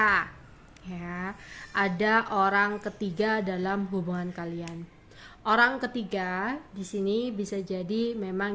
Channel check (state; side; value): identical; both; correlation 1.00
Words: ya ada orang ketiga dalam hubungan kalian. Orang ketiga di sini bisa jadi